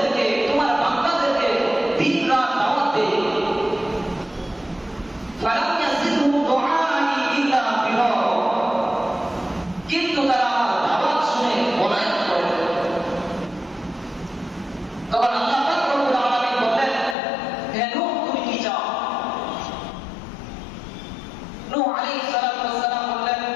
তোমার বান্দাদেরকে দিন রাত দাওয়াত দেই। ফালাম ইয়াজিদহুম দুআই ইল্লা ফিরারা। কিন্তু তারা আমার দাওয়াত শুনে পলায়ন করে। তখন আল্লাহ পাক রব্বুল আলামিন বললেন, হে নূহ, তুমি কি চাও? নূহ আলাইহিস সালাতু ওয়াস সালাম বললেন,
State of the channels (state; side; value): drops out; right; at 17.2 s